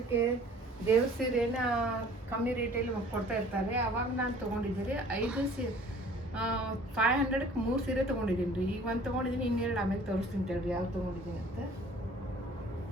ದೇವ್ರ ಸೀರೆನ ಕಮ್ಮಿ ರೇಟಲ್ಲಿ ಕೊಡ್ತಾ ಇರ್ತಾರೆ. ಅವಾಗ ನಾನು ತೊಗೊಂಡಿದ್ದೆ ರೀ 500ಕ್ಕೆ 3 ಸೀರೆ ತೊಗೊಂಡಿದ್ದೀನಿ ರೀ. ಈಗ ಒಂದು ತೊಗೊಂಡಿದ್ದೀನಿ, ಇನ್ನೆರಡು ಆಮೇಲೆ ತೋರಿಸ್ತೀನಿ ತೇಳ್ರಿ ಯಾವ್ದು ತೊಗೊಂಡಿದ್ದೀನಿ ಅಂತ.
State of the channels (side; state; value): both; normal; correlation 0.50